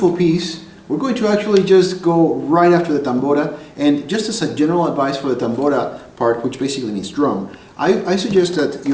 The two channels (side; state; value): both; identical; correlation 1.00